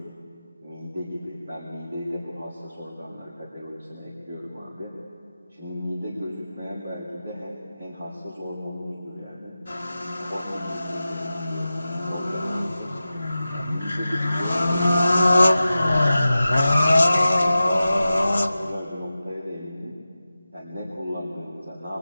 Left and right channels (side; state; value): both; inverted; correlation -0.94